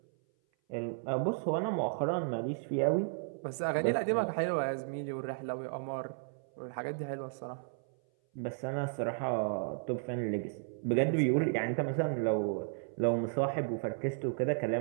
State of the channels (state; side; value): silent; left; 55 dB below the other